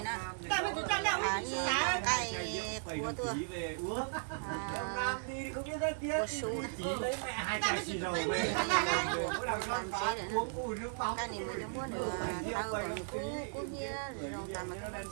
nè Tại mà tụi cho đâu à đi như xá. cái của tua về uống. Ông à Nam đi không biết nói tiếng. của su này Chỉ lấy mẹ hai cái xì dầu về. Mỗi lần con phá uống ui nước bóng. cái này mới giống muốn được tao còn cú nhia rồi tao mà nó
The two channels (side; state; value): left; silent; 54 dB below the other